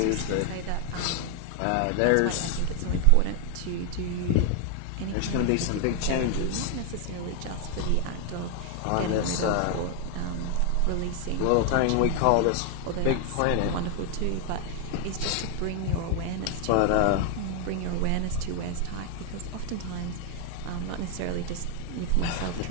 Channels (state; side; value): different; both; correlation 0.00